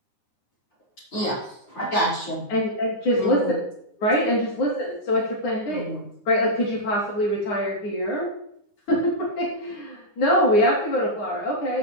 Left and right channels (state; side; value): late; right; 9.7 ms